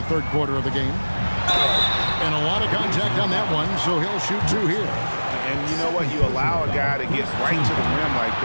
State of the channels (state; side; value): inverted; both; correlation -1.00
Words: third quarter of the game. And a lot of contact on that one, so he'll shoot two here. And you know what? You allow a guy to get right to the rim like